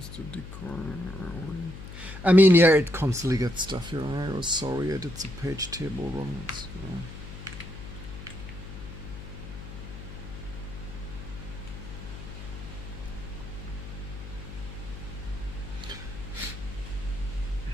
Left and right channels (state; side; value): noise; left; hum, 11 dB below the sound